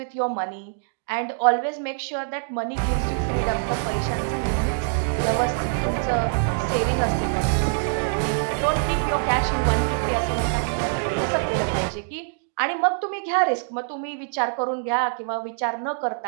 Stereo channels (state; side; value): silent; left; digital silence